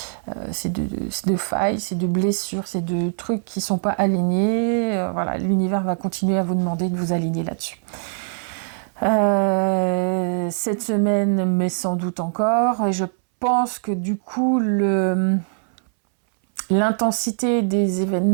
c'est de failles, c'est de blessures, c'est de trucs qui sont pas alignés. Voilà, l'univers va continuer à vous demander de vous aligner là-dessus. Cette semaine, mais sans doute encore, et je pense que du coup, l'intensité des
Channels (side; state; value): left; silent; 64 dB below the other